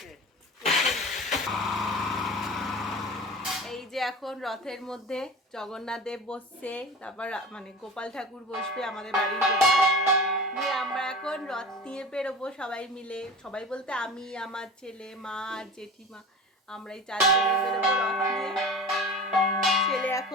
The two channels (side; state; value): both; normal; correlation 0.34